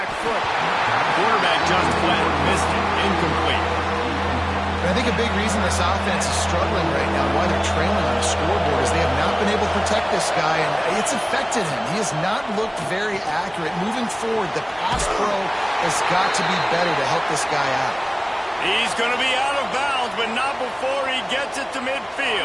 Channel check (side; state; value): both; identical; correlation 1.00